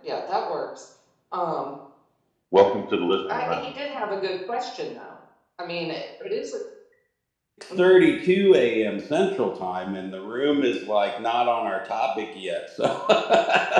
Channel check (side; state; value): both; identical; correlation 1.00